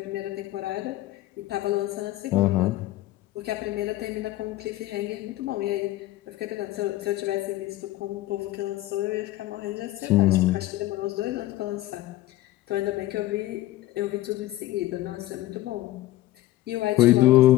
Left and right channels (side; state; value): right; quieter; 16.4 dB